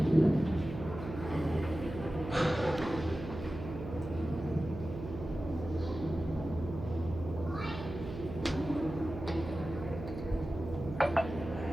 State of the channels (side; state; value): right; noise; hum, 9 dB below the sound